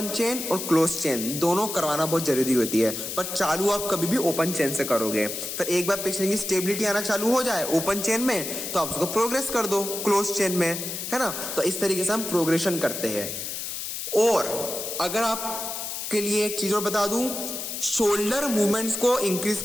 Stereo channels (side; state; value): left; noise; hiss, 5 dB below the sound